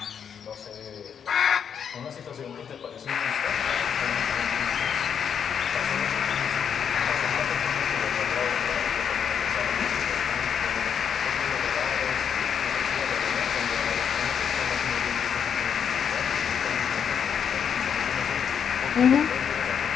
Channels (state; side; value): quieter; right; 7.7 dB